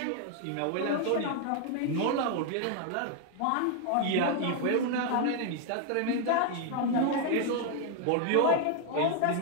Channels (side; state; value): both; different; correlation 0.00